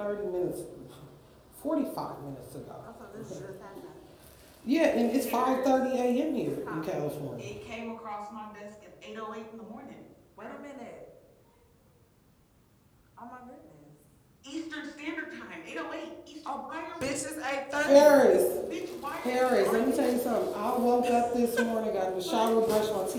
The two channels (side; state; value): both; identical; correlation 1.00